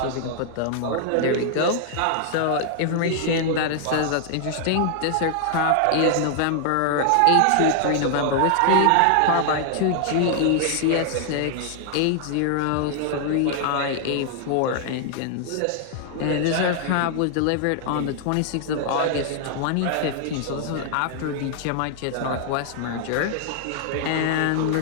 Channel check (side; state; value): both; different; correlation -0.01